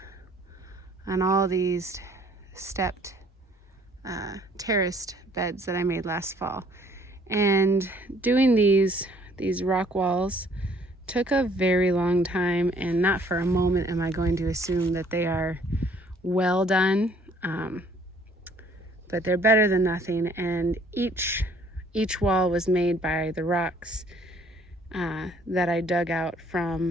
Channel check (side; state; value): both; normal; correlation 0.60